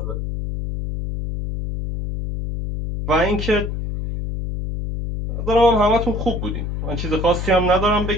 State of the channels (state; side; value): noise; left; hum, 4 dB below the sound